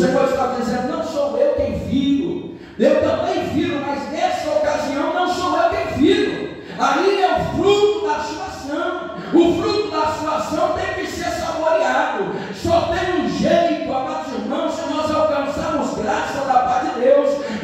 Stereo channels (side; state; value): both; identical; correlation 1.00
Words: está dizendo: não sou eu quem firo, eu também firo, mas nessa ocasião não sou eu quem firo. Aí é o fruto da sua ação. O fruto da sua ação tem que ser saboreado. Só tem um jeito, amados irmãos, se nós alcançarmos graça da parte de Deus,